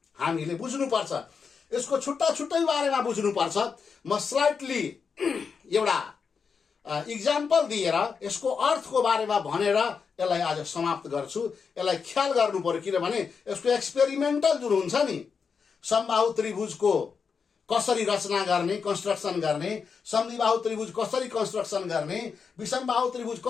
हामीले बुझ्नुपर्छ। यसको छुट्टा छुट्टै बारेमा बुझ्नुपर्छ। म स्लाइटली एउटा इक्जाम्पल दिएर यसको अर्थको बारेमा भनेर यसलाई आज समाप्त गर्छु। यसलाई ख्याल गर्नु पर्यो, किनभने यसको एक्सपेरिमेन्टल जुन हुन्छ नि, समबाहु त्रिभुजको कसरी रचना गर्ने, कन्स्ट्रक्सन गर्ने, समद्विबाहु त्रिभुज कसरी कन्स्ट्रक्सन गर्ने, विषमबाहु त्रिभुज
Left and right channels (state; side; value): quieter; right; 5.8 dB